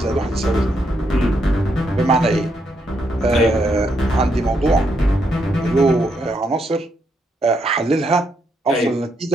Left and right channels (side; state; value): both; normal; correlation 0.77